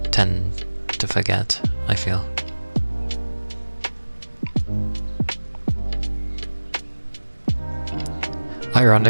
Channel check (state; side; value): inverted; both; correlation -1.00